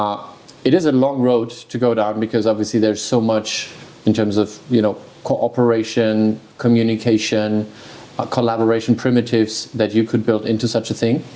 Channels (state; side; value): identical; both; correlation 1.00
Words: It is a long road to go down because obviously there's so much in terms of cooperation, communication, collaboration primitives that you could build into such a thing.